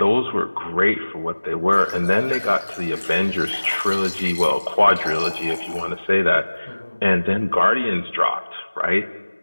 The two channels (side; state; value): both; inverted; correlation -1.00